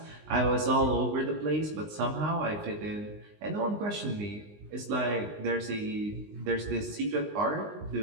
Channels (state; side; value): late; left; 19 ms